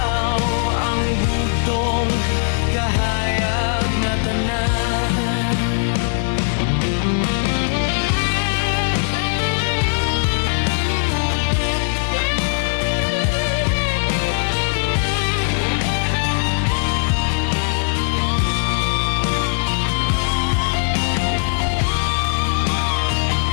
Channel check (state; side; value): silent; right; 65 dB below the other